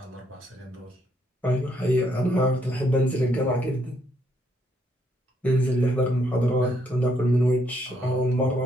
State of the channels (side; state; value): both; normal; correlation 0.72